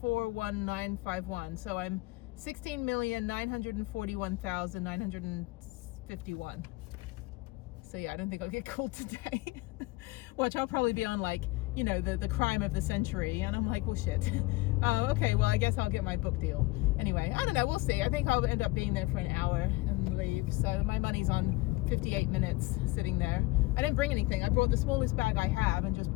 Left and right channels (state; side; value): quieter; right; 21.4 dB